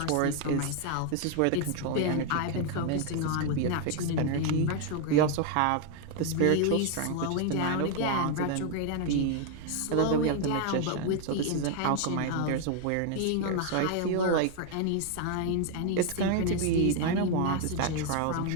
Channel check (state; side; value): different; both; correlation 0.00